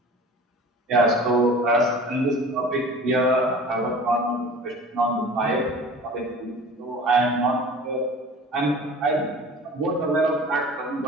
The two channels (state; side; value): normal; both; correlation 0.41